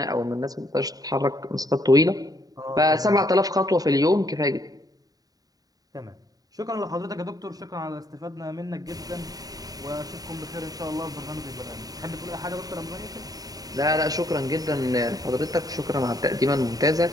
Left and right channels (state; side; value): late; left; 0.18 ms